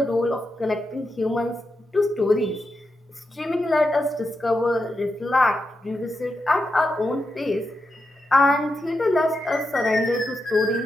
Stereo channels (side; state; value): both; normal; correlation 0.87